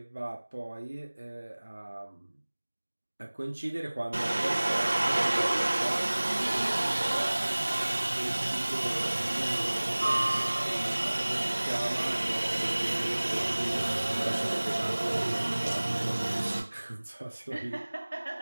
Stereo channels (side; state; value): both; inverted; correlation -1.00